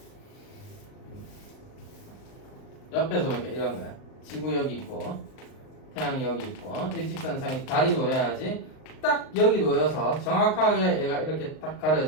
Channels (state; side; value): late; right; 38 ms